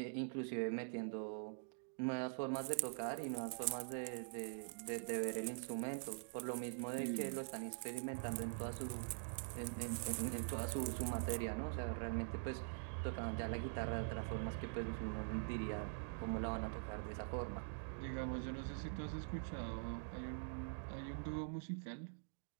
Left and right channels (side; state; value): left; silent; digital silence